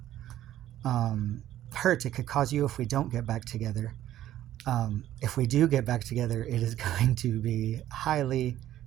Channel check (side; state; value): left; quieter; 12.8 dB